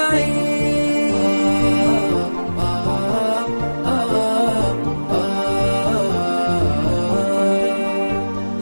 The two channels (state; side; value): inverted; both; correlation -1.00